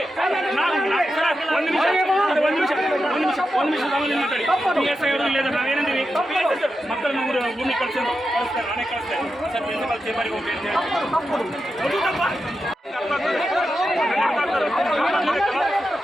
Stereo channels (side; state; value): both; normal; correlation 0.89